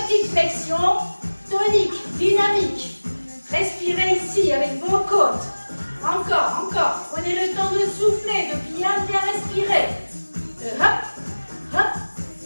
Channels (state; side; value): inverted; both; correlation -1.00